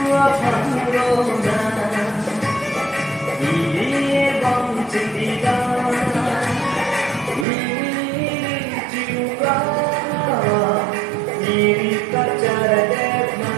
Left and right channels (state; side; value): drops out; left; at 7.5 s